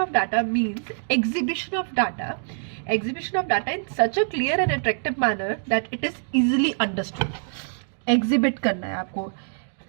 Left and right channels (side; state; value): left; silent; digital silence